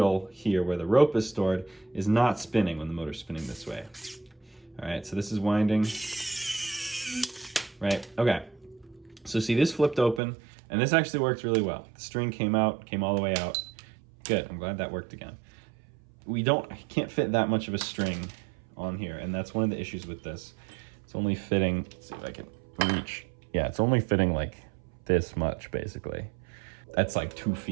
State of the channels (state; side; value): drops out; left; at 10.2 s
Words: here where the rope is stored is not spinning when the motor's spinning this way. All right, so this is winding. Right, okay. So see, this flipped open, and this actually worked really well. The string came out, came all the way out. Good, I'm glad that worked again. I can't fit that much of a string on here, and that's one of the issues with this. It's only fitting, let's see if I can reach. Yeah, it's only fitting like this much, basically. That's like 2